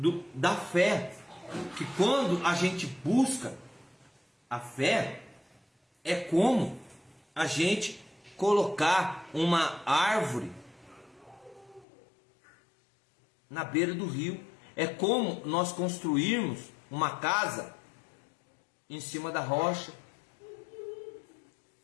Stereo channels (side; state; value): right; drops out; at 11.9 s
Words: da fé, que quando a gente busca a fé, é como a gente colocar uma árvore na beira do rio. É como nós construirmos uma casa em cima da rocha.